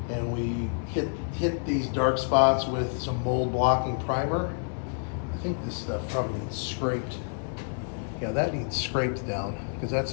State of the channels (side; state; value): right; silent; 59 dB below the other